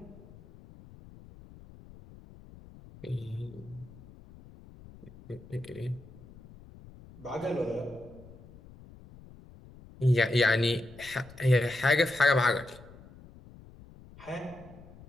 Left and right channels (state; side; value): noise; left; rumble, 20 dB below the sound